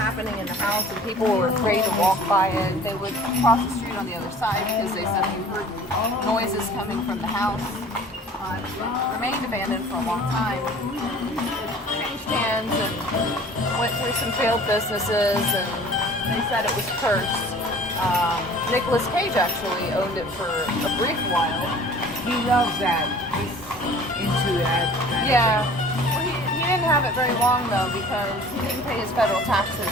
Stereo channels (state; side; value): normal; both; correlation 0.47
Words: in the house, and people were afraid to walk by it. They would cross the street on the other side because they said they heard noises coming from the house. It remained abandoned for a long time. Changed hands and went through some failed businesses, and they said it was cursed. Nicolas Cage actually owned it for a brief while. He loves that. He's into that. Yeah. Well, he didn't have it very long though because he didn't pay his federal taxes,